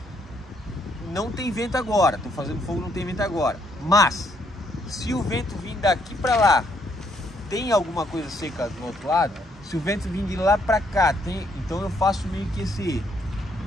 Não tem vento agora, estou fazendo fogo, não tem vento agora, mas se o vento vir daqui para lá, tem alguma coisa seca do outro lado. Se o vento vir de lá para cá, então eu faço meio que esse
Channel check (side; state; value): both; normal; correlation 0.71